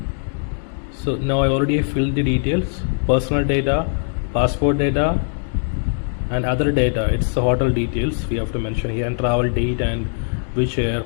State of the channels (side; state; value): right; silent; 65 dB below the other